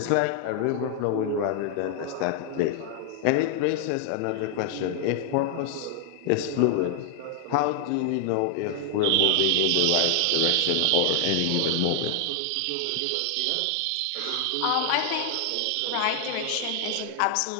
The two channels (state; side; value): different; both; correlation 0.00